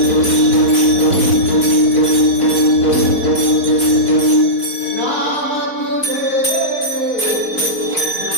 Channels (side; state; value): right; late; 4.0 ms